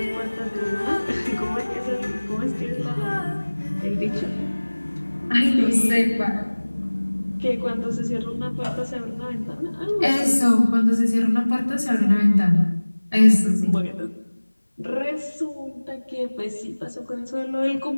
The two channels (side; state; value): both; inverted; correlation -1.00